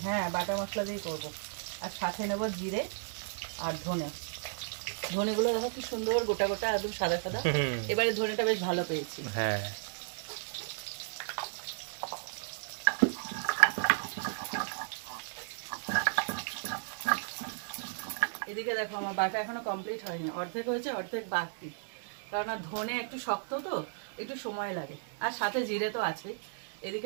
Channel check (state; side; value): silent; left; digital silence